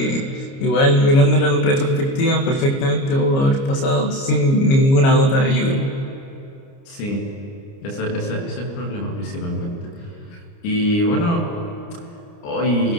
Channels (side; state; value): right; late; 29 ms